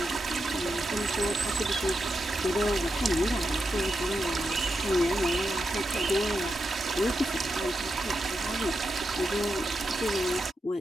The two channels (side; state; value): both; normal; correlation 0.87